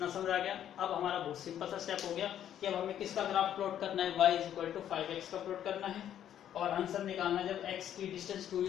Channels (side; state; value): right; quieter; 10.5 dB